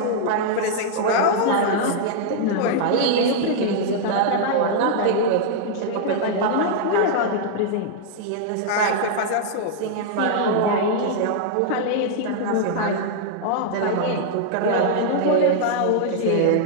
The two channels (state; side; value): different; both; correlation -0.01